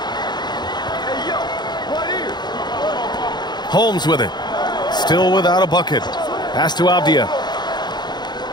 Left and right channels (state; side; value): late; right; 0.21 ms